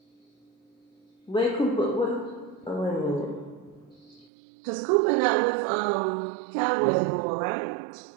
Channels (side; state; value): left; drops out; at 4.2 s